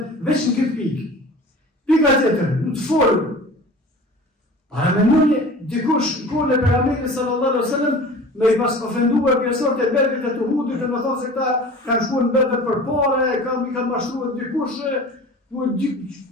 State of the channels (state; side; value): normal; both; correlation 0.40